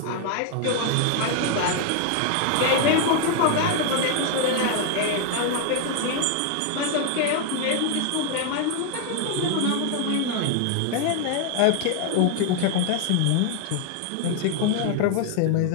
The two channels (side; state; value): both; different; correlation 0.00